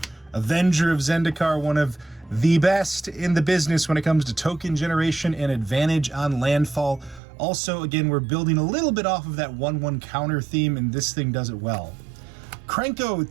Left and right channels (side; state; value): left; drops out; at 7.2 s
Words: Avenger of Zendikar, one of the best in the business when it comes to token generation and advantage on landfall. Also, again, we're building a little bit off of that 1/1 counter theme, and this thing does it well. Krenko,